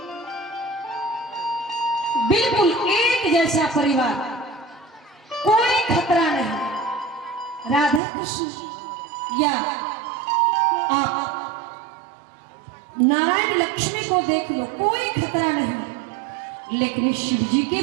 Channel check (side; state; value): left; drops out; at 8.0 s